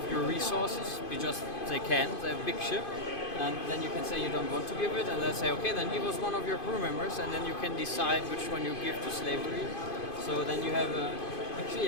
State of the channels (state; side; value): late; right; 2.5 ms